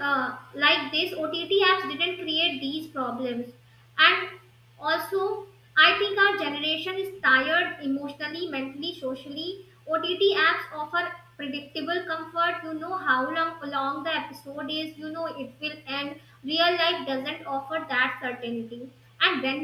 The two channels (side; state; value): both; identical; correlation 1.00